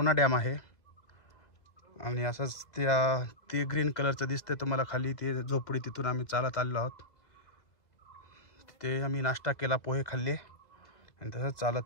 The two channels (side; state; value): right; late; 2.2 ms